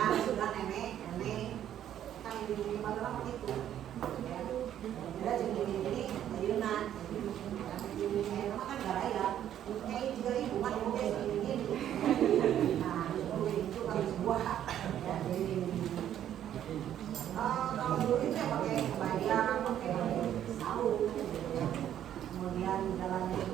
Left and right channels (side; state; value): left; quieter; 10.8 dB